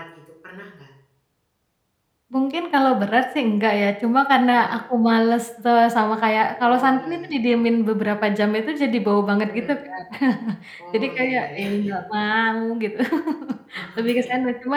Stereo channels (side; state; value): both; identical; correlation 1.00